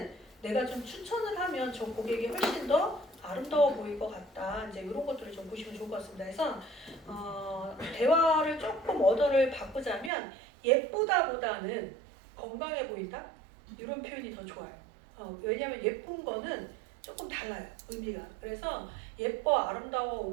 내가 좀 추천을 하면 저 고객이 훨씬 더 아름다워 보일 것 같다. 이제 이런 것들을 좀 보시면 좋을 것 같습니다. 그래서 대화를 조금 언어를 바꾸자면 예쁘다보다는 건강해 보인다? 이런 표현이 더 좋아요. 왜냐하면 예쁜 거는 조금 달라요. 의미가. 그래서 예뻐, 아름다워,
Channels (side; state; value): left; drops out; at 10.1 s